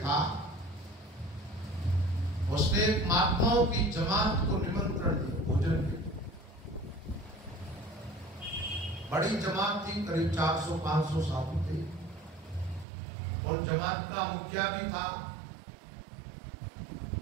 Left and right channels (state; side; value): drops out; left; at 12.9 s